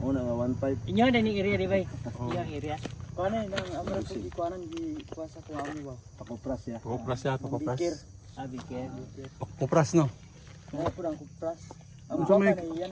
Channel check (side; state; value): both; identical; correlation 1.00